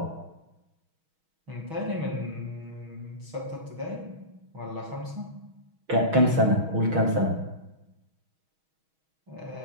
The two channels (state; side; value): late; left; 6.3 ms